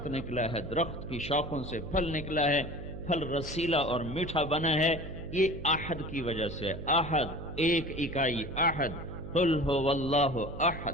نکلا ہے، درخت کی شاخوں سے پھل نکلا ہے، پھل رسیلا اور میٹھا بنا ہے۔ یہ احد کی وجہ سے، احد ایک اکائی، احد قل هو اللہ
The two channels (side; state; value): right; noise; hum, 10 dB below the sound